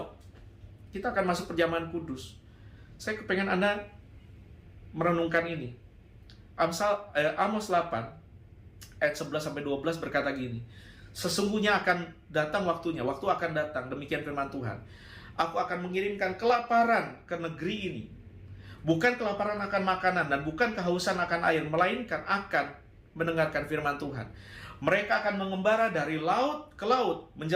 kita akan masuk perjamuan kudus. Saya kepengen Anda merenungkan ini. Amos 8 ayat 11-12 berkata gini, sesungguhnya akan datang waktunya, waktu akan datang, demikian firman Tuhan, aku akan mengirimkan kelaparan ke negeri ini. Bukan kelaparan akan makanan dan bukan kehausan akan air, melainkan akan mendengarkan firman Tuhan. Mereka akan mengembara dari laut ke laut,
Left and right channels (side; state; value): both; identical; correlation 1.00